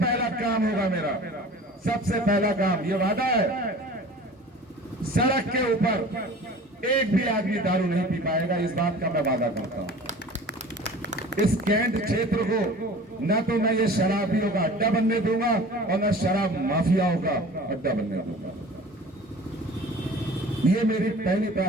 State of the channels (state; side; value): normal; both; correlation 0.42